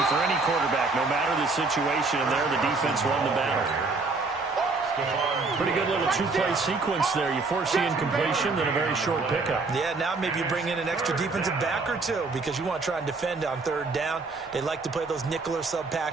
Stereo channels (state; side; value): quieter; left; 3.9 dB